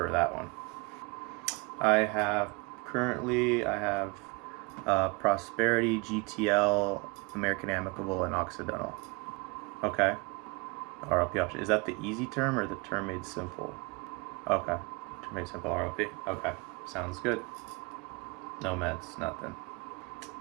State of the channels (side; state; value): left; quieter; 28.5 dB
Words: that one. I have Prosperity, GTL, American Amicable, and Occidental. Okay. RLP option. Is that the easy term or the term made simple? Okay. Term made simple RLP. Okay. Sounds good. No meds, nothing.